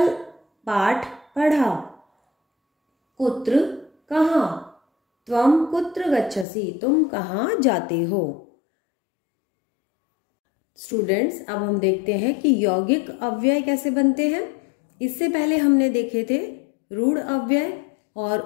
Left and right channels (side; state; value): right; drops out; at 6.5 s